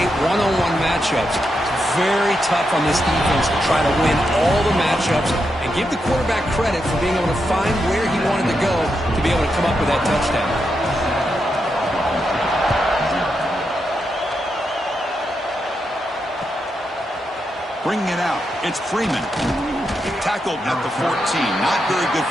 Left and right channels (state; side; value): normal; both; correlation 0.84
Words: one-on-one matchups. It's very tough on this defense to try to win all the matchups and give the quarterback credit for being able to find where he wanted to go to be able to come up with that touchdown. Bringing it out, it's Freeman. Tackled at the 14. Not very good